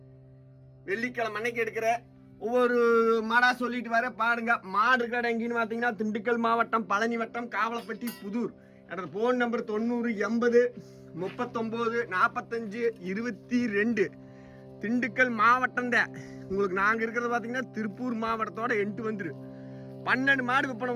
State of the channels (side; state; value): both; identical; correlation 1.00